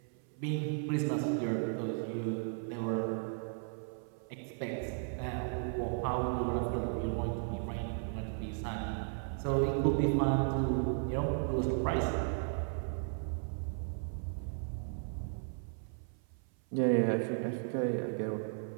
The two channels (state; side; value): silent; left; 54 dB below the other